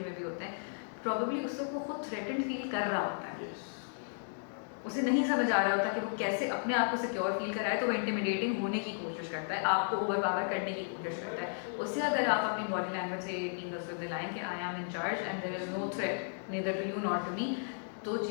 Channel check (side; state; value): right; silent; digital silence